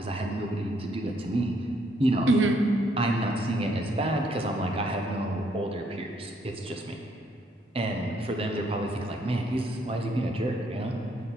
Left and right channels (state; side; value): normal; both; correlation 0.70